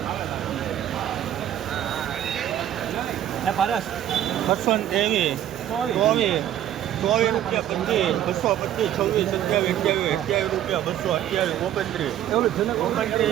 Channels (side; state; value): left; quieter; 11.6 dB